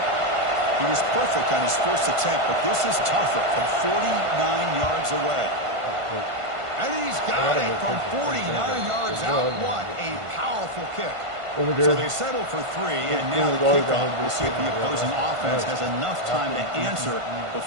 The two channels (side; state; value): left; late; 1.5 ms